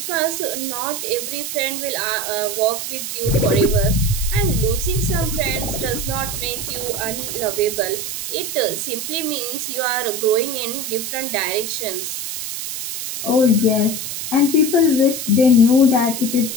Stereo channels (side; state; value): right; noise; hiss, 5 dB below the sound